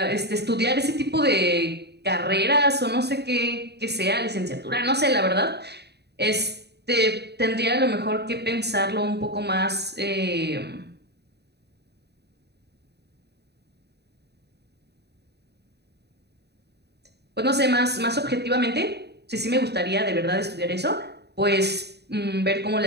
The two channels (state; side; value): late; left; 0.48 ms